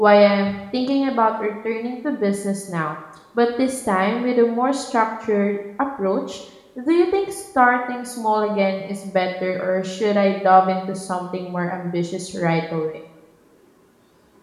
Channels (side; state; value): both; identical; correlation 1.00